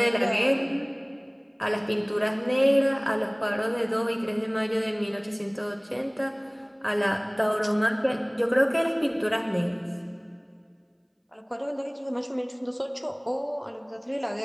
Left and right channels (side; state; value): both; identical; correlation 1.00